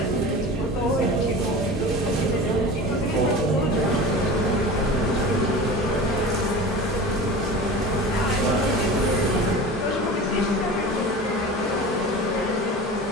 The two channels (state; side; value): normal; both; correlation 0.34